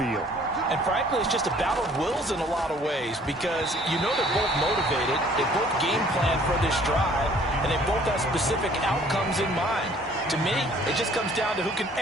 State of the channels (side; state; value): both; normal; correlation 0.56